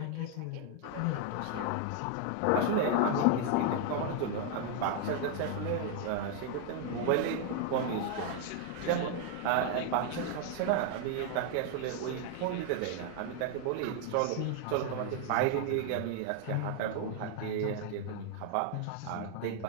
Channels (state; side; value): different; both; correlation 0.00